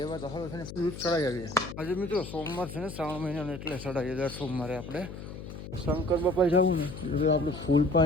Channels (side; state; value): left; noise; hum, 11 dB below the sound